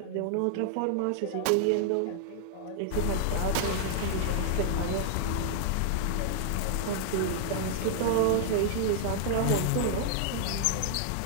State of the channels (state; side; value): different; both; correlation 0.00